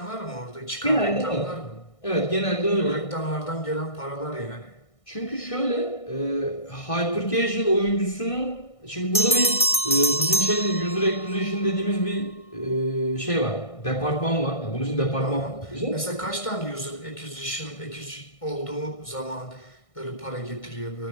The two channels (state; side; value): late; right; 1.6 ms